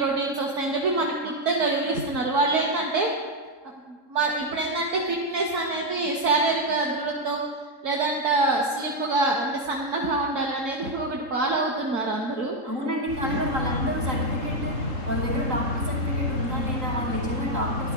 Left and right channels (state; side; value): late; left; 3.7 ms